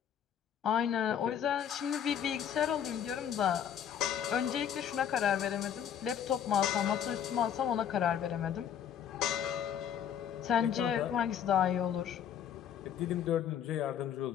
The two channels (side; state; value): right; quieter; 9.1 dB